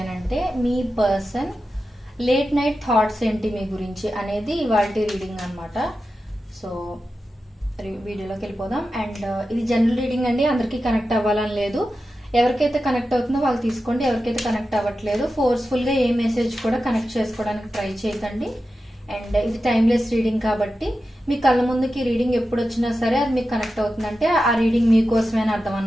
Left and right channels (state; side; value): normal; both; correlation 0.91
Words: అంటే మీ పర్సన్ లేట్ నైట్ థాట్స్ ఏంటి మీ గురించి అనేది ఇవాల్టి రీడింగ్ అన్నమాట. సో వీడియోలోకి వెళ్ళిపోదాం. అండ్ ఇది జనరల్ రీడింగ్ అండి, అందరికీ కనెక్ట్ అవ్వాలని లేదు. ఎవరికైతే కనెక్ట్ అవుతుందో వాళ్ళు తీసుకోండి, ఎవరికైతే కనెక్ట్ అవ్వట్లేదు ఫోర్స్ఫుల్ గా ఏ మెసేజ్ కూడా కనెక్ట్ చేసుకోవడానికి ట్రై చేయకండి. అండ్ ఇది టైమ్లెస్ రీడింగ్ కాబట్టి మీ కళ్ళ ముందుకి రీడింగ్ ఎప్పుడు వచ్చినా సరే అది మీకు కనెక్ట్ అవుతుందంటే ఆ రీడింగ్ మీకోసమే అర్థం